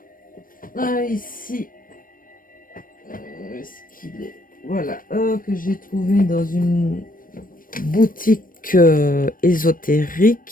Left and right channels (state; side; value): late; right; 0.40 ms